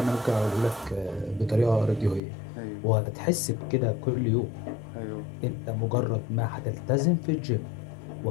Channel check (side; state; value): right; drops out; at 2.2 s